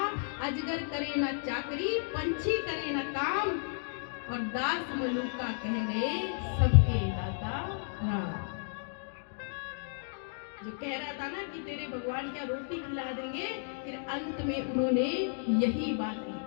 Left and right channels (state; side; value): silent; right; digital silence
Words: अजगर करे ना चाकरी, पंछी करे ना काम, और दास मलुका कह गए सबके दाता राम। जो कह रहा था ना कि तेरे भगवान क्या रोटी खिला देंगे, फिर अंत में उन्होंने यही बात